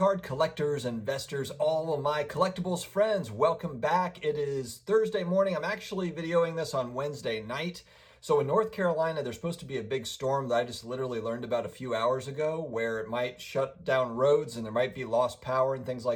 collectors, investors, all of my collectibles friends, welcome back. It is Thursday morning. I'm actually videoing this on Wednesday night. So in North Carolina, there's supposed to be a big storm that I just literally learned about a few hours ago where it might shut down roads and there might be lost power and things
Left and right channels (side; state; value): both; identical; correlation 1.00